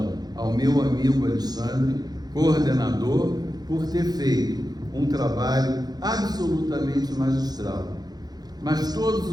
ao meu amigo Alexandre, coordenador, por ter feito um trabalho absolutamente magistral. Mas todos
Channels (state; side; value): late; left; 0.19 ms